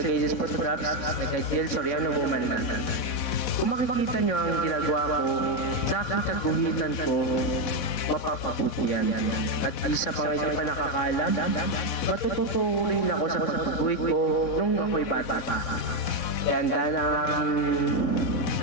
Photographs na kay Jill Soriano Woman na. Kung makikita niyo ang ginagawa ko sa aking kaguhitan ko, mapapabuti yan. At isa pa nga hindi pa nakakaalam, matututo rin ako sa pagguhit ko nung ako'y bata pa. Kaya handa na ang aking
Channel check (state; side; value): late; right; 4.1 ms